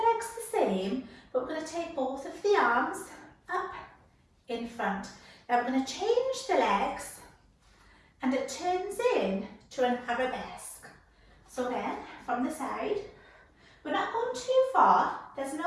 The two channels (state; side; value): identical; both; correlation 1.00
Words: the same, but we're going to take both of the arms up in front. Now we're going to change the legs and it turns in to an arabesque. So again, from the side, we're not going too far, there's